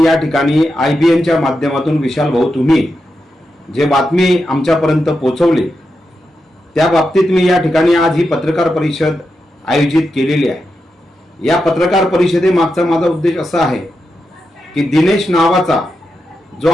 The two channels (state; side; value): normal; both; correlation 0.87